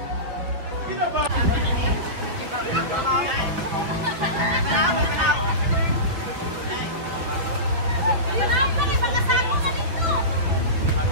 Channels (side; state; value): left; late; 5.7 ms